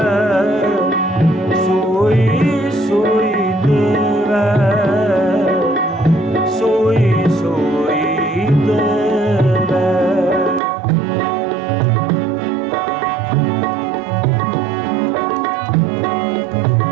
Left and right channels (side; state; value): left; drops out; at 10.6 s